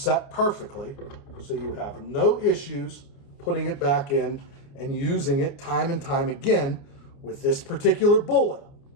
perfectly, so you have no issues putting it back in and using it time and time again with this particular bullet.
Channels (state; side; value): late; right; 29 ms